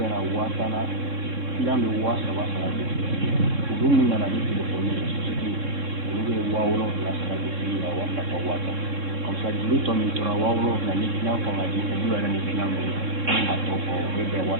wasana islam be wasa wasa ulu na na ni téléphone ni ulu be wawlo la sa di ya wasa ka wasa comme ça du temps mi tora wawlo la ni islam ko ngadi ko du ni islam be a to ko be be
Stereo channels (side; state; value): left; late; 3.6 ms